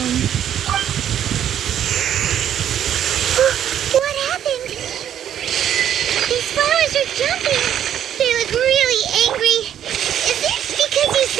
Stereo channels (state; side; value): quieter; left; 10.1 dB